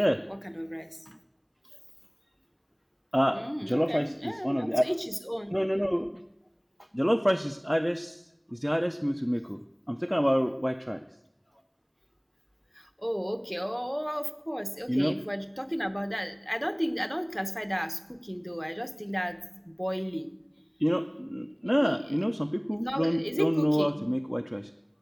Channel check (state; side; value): identical; both; correlation 1.00